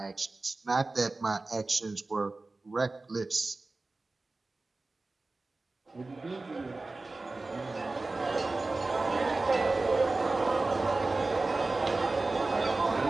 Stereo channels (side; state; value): left; quieter; 3.3 dB